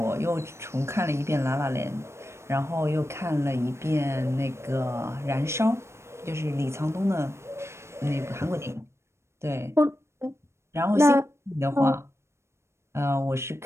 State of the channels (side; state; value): left; late; 0.13 ms